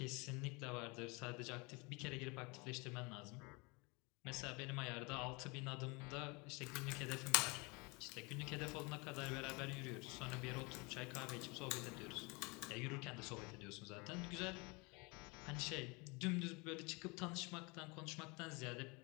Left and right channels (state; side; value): quieter; right; 28.2 dB